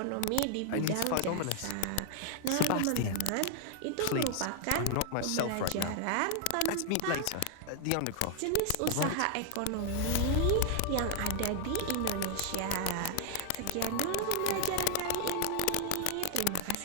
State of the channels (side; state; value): both; different; correlation 0.00